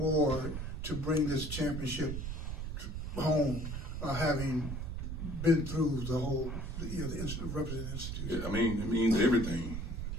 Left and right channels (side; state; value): right; noise; rumble, 5 dB below the sound